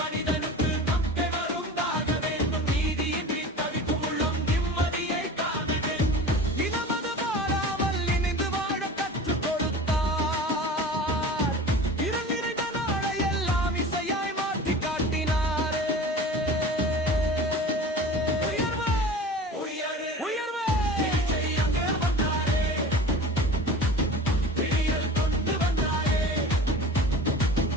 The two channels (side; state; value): both; normal; correlation 0.37